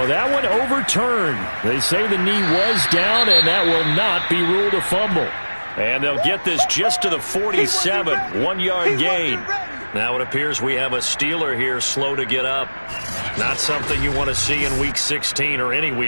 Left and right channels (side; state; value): both; inverted; correlation -1.00